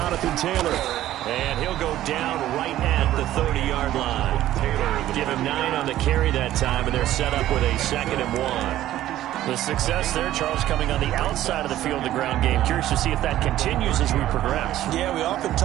Taylor. And he'll go down right at the 30-yard line. Give him 9 on the carry that time, and they're set up with a 2nd and 1. The success there, Charles, coming on the outside of the field, the ground game. Curious to see if that continues as we progress. Yeah, we often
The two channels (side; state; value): left; quieter; 13.6 dB